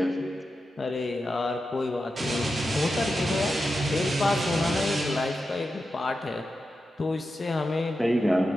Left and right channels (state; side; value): normal; both; correlation 0.90